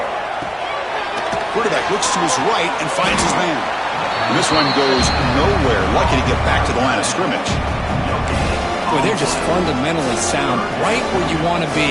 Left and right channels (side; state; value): both; identical; correlation 1.00